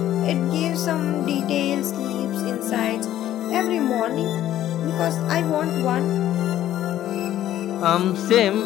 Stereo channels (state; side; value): quieter; right; 12.6 dB